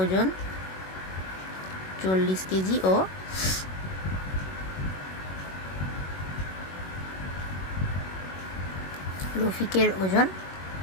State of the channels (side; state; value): right; late; 21 ms